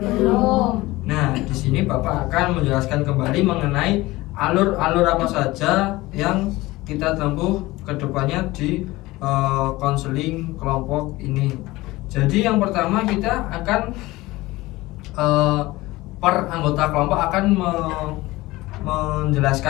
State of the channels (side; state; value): right; quieter; 19.5 dB